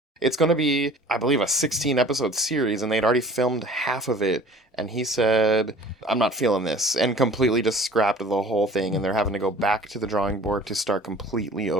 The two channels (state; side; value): normal; both; correlation 0.47